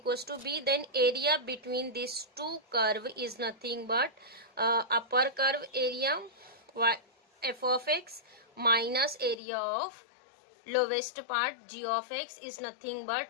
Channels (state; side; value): drops out; right; at 9.4 s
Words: to b, then area between these two curve is nothing but upper curve area y f of x minus area of lowest part g of x is nothing but